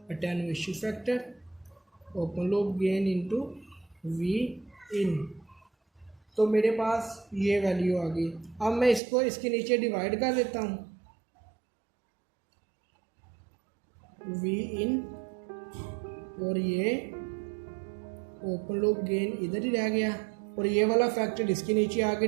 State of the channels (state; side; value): drops out; left; at 9.0 s